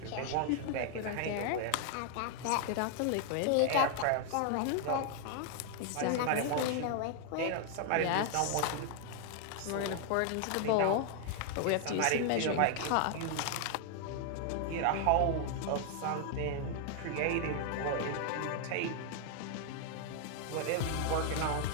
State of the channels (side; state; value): both; different; correlation 0.00